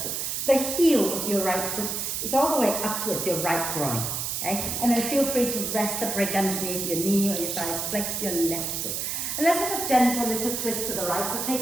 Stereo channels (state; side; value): noise; right; hiss, 2 dB below the sound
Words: the heel of your right foot is all the way up towards your right groin, okay? And then feel free to rest a brick underneath your knee or your thighs, flex your left foot. And let's have a gentle little twist to the right. So